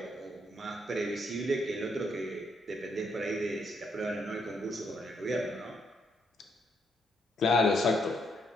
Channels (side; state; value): both; normal; correlation 0.75